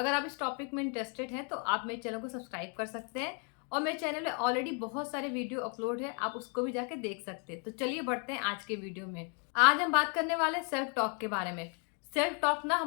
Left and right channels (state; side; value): quieter; right; 39.0 dB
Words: आप इस टॉपिक में इंटरेस्टेड हैं तो आप मेरे चैनल को सब्सक्राइब कर सकते हैं और मेरे चैनल में ऑलरेडी बहुत सारे वीडियो अपलोड है, आप उसको भी जाके देख सकते हैं। तो चलिए बढ़ते हैं आज के वीडियो में। आज हम बात करने वाले हैं सेल्फ टॉक के बारे में। सेल्फ टॉक ना